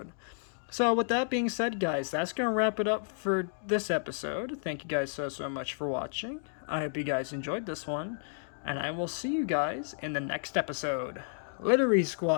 So with that being said guys, that's going to wrap it up for this episode. Thank you guys so much for watching. I hope you guys enjoyed this one. And I will see you guys in the next episode. Later,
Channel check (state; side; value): silent; right; digital silence